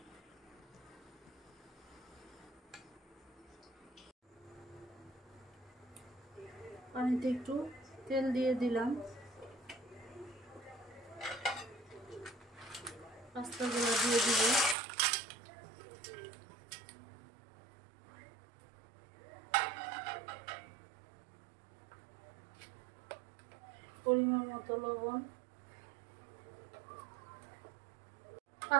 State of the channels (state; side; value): drops out; left; at 14.8 s